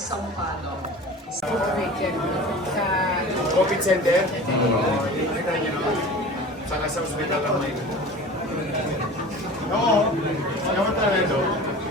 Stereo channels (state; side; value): normal; both; correlation 0.38